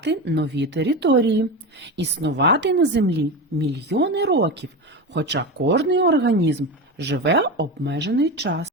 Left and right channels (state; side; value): normal; both; correlation 0.21